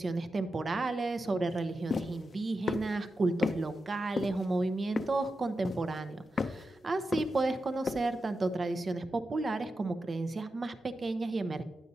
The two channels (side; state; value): both; normal; correlation 0.89